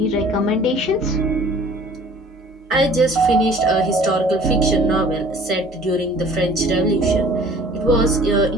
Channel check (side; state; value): both; normal; correlation 0.50